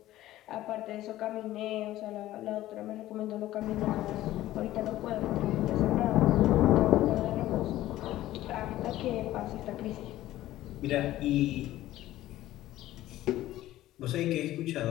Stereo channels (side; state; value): right; quieter; 14.9 dB